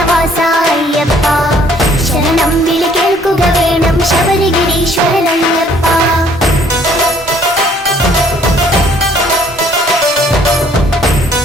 അയ്യപ്പ ശരണം വിളി കേൾക്കുക വേണം ശബരിഗിരീശ്വരനയ്യപ്പ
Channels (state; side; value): normal; both; correlation 0.60